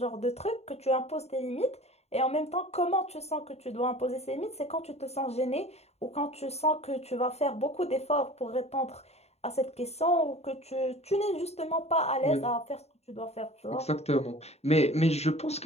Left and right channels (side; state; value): right; late; 0.31 ms